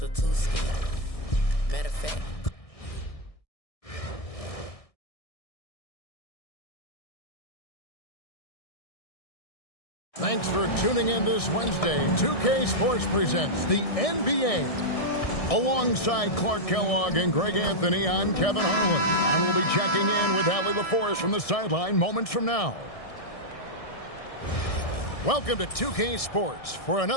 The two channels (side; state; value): right; late; 1.6 ms